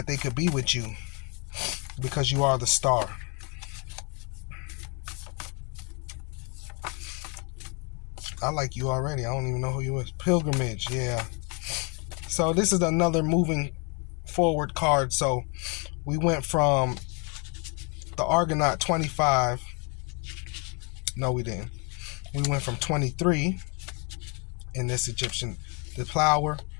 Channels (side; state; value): right; quieter; 34.3 dB